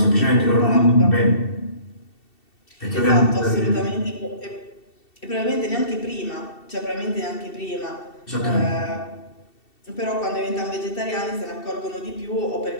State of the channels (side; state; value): right; late; 2.7 ms